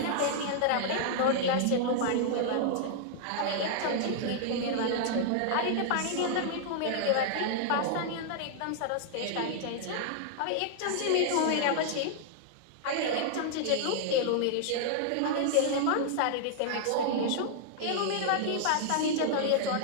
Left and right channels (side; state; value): both; different; correlation -0.01